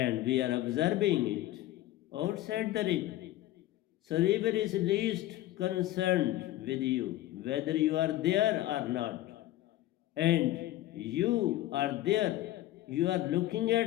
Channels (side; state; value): right; quieter; 15.2 dB